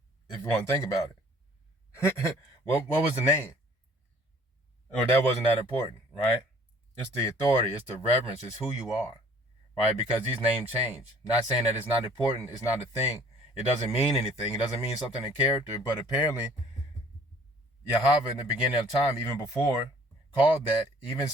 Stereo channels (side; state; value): both; normal; correlation 0.54